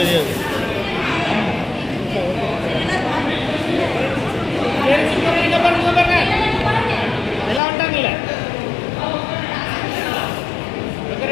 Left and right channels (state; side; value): drops out; right; at 7.6 s